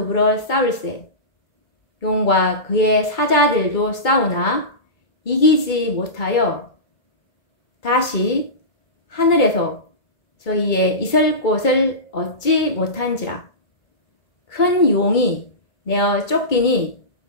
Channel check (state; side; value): late; right; 2.3 ms